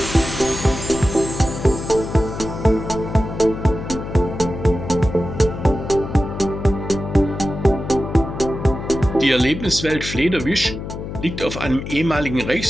Die Erlebniswelt Flederwisch liegt auf einem ehemaligen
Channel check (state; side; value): noise; left; hum, 8 dB below the sound